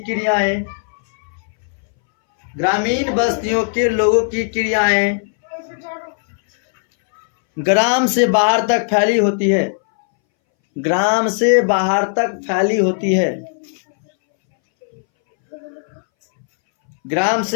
क्रियाएं ग्राम से बाहर तक फैली होती है। ग्राम से बाहर तक फैली होती है। ग्राम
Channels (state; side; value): silent; right; 65 dB below the other